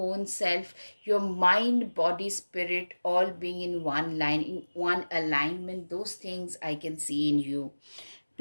self, your mind, body, spirit, all being in one line, in one alignment. Those things I can see in you.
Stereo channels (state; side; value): inverted; both; correlation -1.00